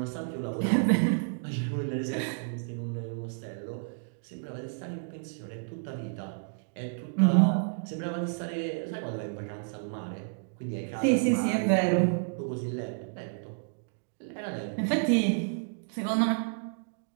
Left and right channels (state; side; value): silent; left; digital silence